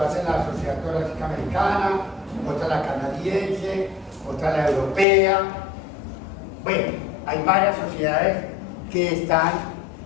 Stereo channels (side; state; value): right; drops out; at 5.1 s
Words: en la Sociedad Torácica Americana, otra la canadiense, otra la europea. Bueno, hay varias sociedades que están